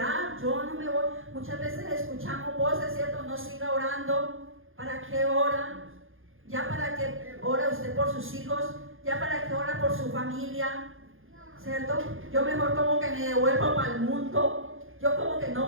yo no me voy. Muchas veces escuchamos voces, ¿cierto? No siga orando. ¿Para qué ora? Ya para qué ora usted por sus hijos, ya para qué ora por su familia, ¿cierto? Yo mejor como que me devuelvo para el mundo, yo como que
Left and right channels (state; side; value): late; left; 0.59 ms